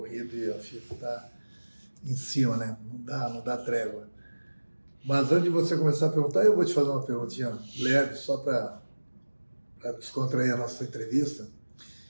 e a FIFA está em cima, né? Não dá trégua. Mas antes de você começar a perguntar, eu vou te fazer uma perguntinha leve, só para descontrair a nossa entrevista.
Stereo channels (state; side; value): inverted; both; correlation -1.00